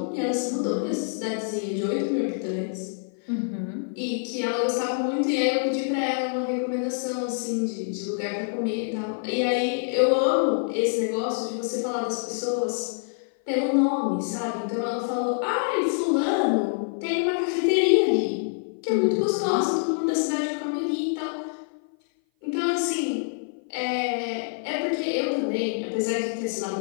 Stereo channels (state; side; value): silent; right; 56 dB below the other